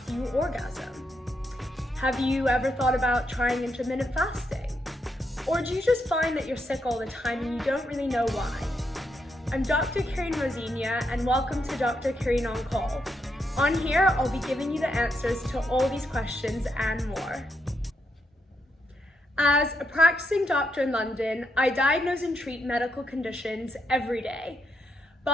you orgasm? Have you ever thought about trying intermittent fasting? Or do you just find that you're sick all the time and you don't really know why? I'm Dr. Carine and welcome to Dr. Carine on Call. On here, I'll be giving you the answers to all these questions and more. As a practicing doctor in London, I diagnose and treat medical conditions every day.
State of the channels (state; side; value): normal; both; correlation 0.80